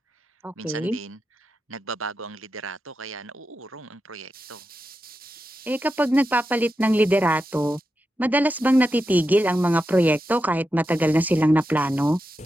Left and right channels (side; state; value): both; normal; correlation 0.89